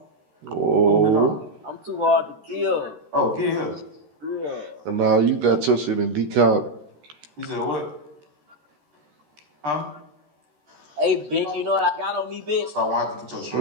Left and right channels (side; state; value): left; late; 13 ms